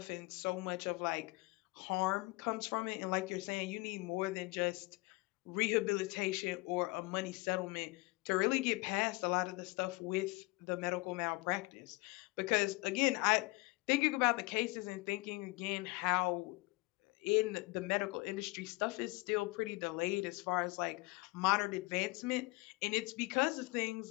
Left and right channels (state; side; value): quieter; right; 24.6 dB